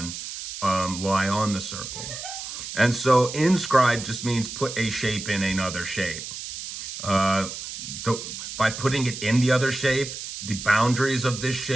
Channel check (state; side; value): noise; right; hiss, 9 dB below the sound